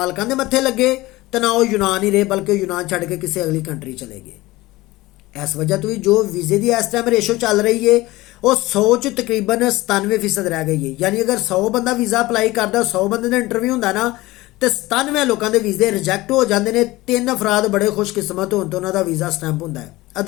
ਦੇ ਮੱਥੇ ਲੱਗੇ ਤੇ ਨਾ ਉਹ यूनान ਹੀ ਰਹੇ, ਬਲਕਿ यूनान ਛੱਡ ਕੇ ਕਿਸੇ ਅਗਲੀ ਕੰਟਰੀ ਚਲੇ ਗਏ। ਇਸ ਵਜ੍ਹਾ ਤੋਂ ਵੀ ਜੋ ਵੀਜ਼ੇ ਦੀ ਇਸ ਟਾਈਮ ਰੇਸ਼ੋ ਚੱਲ ਰਹੀ ਹੈ ਉਹ 100 'ਚ ਤਕਰੀਬਨ 97% ਰਹਿ ਗਈ ਹੈ। ਯਾਨੀ ਅਗਰ 100 ਬੰਦਾ ਵੀਜ਼ਾ ਅਪਲਾਈ ਕਰਦਾ, 100 ਬੰਦੇ ਦਾ ਇੰਟਰਵਿਊ ਹੁੰਦਾ ਨਾ, ਤੇ 97 ਲੋਕਾਂ ਦੇ ਵੀਜ਼ੇ ਰਿਜੈਕਟ ਹੋ ਜਾਂਦੇ ਨੇ। 3 ਅਫਰਾਦ ਬੜੇ ਖੁਸ਼ਕਿਸਮਤ ਹੋਣ ਤੋਂ ਉਹਨਾਂ ਦਾ ਵੀਜ਼ਾ ਸਟੈਂਪ ਹੁੰਦਾ ਹੈ,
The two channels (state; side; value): quieter; right; 19.3 dB